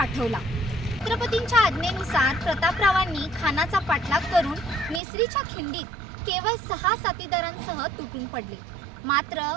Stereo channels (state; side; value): drops out; left; at 5.0 s